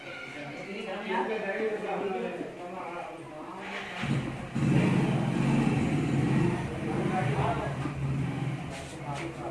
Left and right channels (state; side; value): identical; both; correlation 1.00